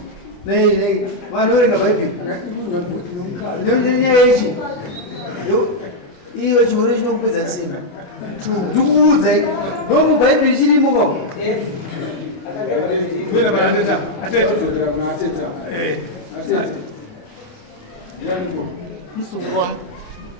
nei vanoverenga bhaibheri nenyaya yechi iyo chihure chinokupedza simba ndikuudzai ndo mubhaibheri chirimo kwavo musukuru wangu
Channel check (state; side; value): late; right; 28 ms